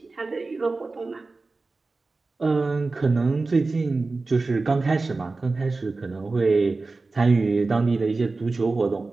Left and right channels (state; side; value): quieter; left; 3.6 dB